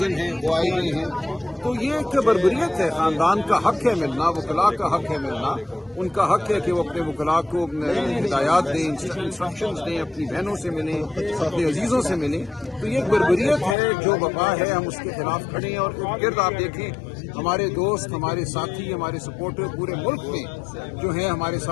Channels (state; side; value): drops out; right; at 13.8 s